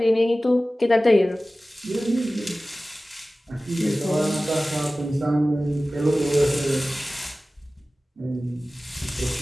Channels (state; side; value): normal; both; correlation 0.97